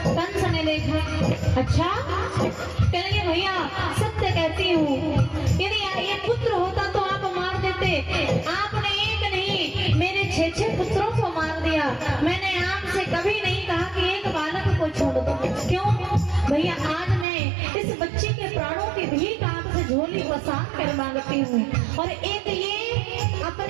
कंस ने देखा, अच्छा कहेंगे भैया सत्य कहती हूँ, यदि ये पुत्र होता तो आप मार देते, आपने एक नहीं मेरे 6 पुत्रों को मार दिया। मैंने आपसे कभी नहीं कहा कि एक बालक को छोड़ दो। क्यों भैया? आज मैं इस बच्चे के प्राणों की भीख आपसे झोली पसार कर मांगती हूँ, और एक ये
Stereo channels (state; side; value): drops out; left; at 17.2 s